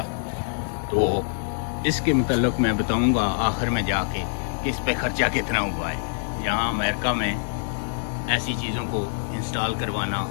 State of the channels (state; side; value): silent; right; digital silence